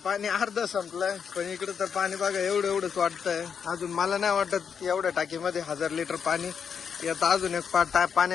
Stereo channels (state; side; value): quieter; right; 6.9 dB